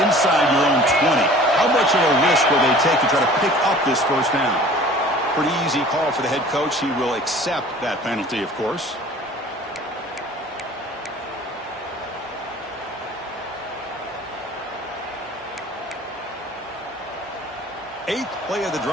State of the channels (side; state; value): both; normal; correlation 0.47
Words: inside your own 20. How much of a risk will they take to try to pick up this first down? Pretty easy call for the head coach. He will accept that penalty, of course. Eighth play of the